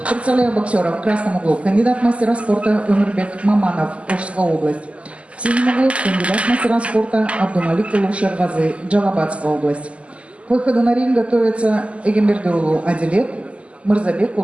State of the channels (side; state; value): left; late; 0.060 ms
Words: Представляю боксера в красном углу. Кандидат мастера спорта Өмірбек Маманов, Ошская область. В синем углу кандидат мастера спорта Абдумалик Шервазы, Джалабадская область. К выходу на ринг готовится Эгембердиулу Адилет, Мырзабек